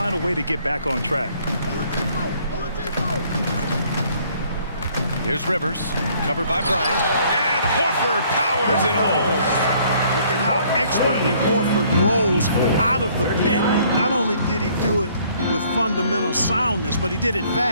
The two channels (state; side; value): inverted; both; correlation -0.62